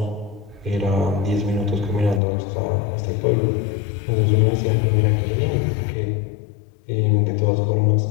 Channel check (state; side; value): drops out; right; at 2.2 s